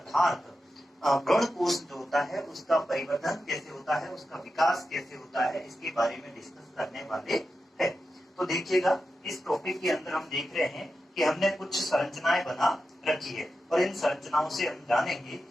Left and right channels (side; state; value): both; normal; correlation 0.90